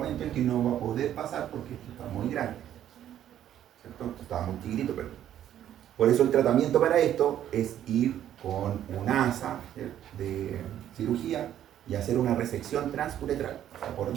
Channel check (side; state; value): left; quieter; 11.1 dB